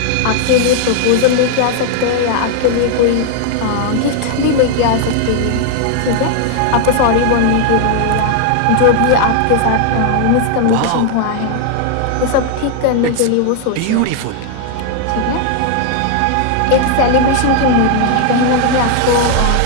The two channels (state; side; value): different; both; correlation 0.00